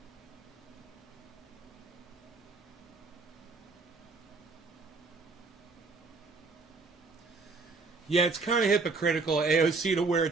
Yeah, it's kind of hypocritical, AOC, to wear a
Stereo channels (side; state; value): left; quieter; 4.0 dB